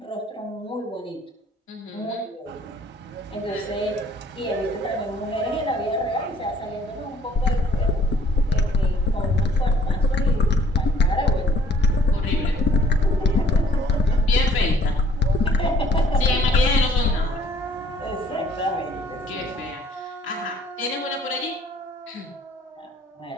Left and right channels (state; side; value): normal; both; correlation 0.59